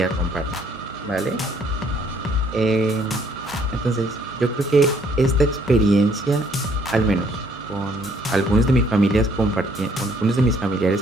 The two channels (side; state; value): both; normal; correlation 0.64